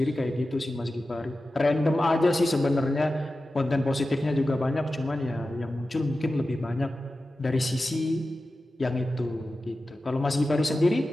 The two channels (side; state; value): both; normal; correlation 0.94